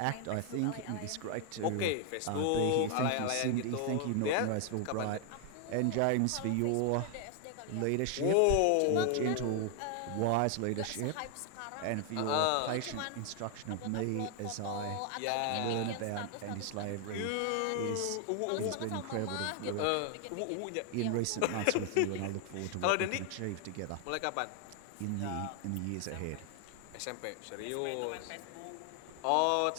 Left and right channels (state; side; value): different; both; correlation 0.00